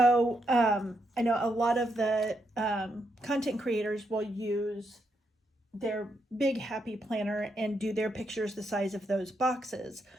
I know a lot of the content creators will use their big happy planner and do their pictures the size of those boxes.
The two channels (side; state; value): both; normal; correlation 0.80